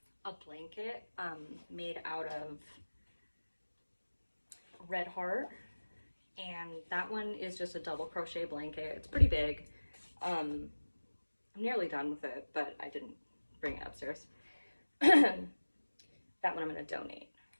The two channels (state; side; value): inverted; both; correlation -1.00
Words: a blanket made out of Red Heart, and that one is just a double crochet blanket. It's pretty big. I'm nearly done with it, but I didn't bring it upstairs. That one I'm going to donate.